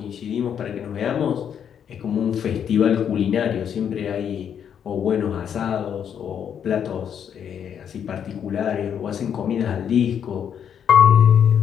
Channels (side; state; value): right; quieter; 8.4 dB